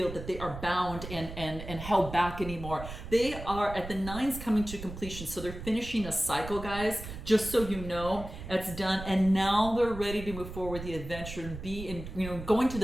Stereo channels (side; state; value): right; noise; rumble, 10 dB below the sound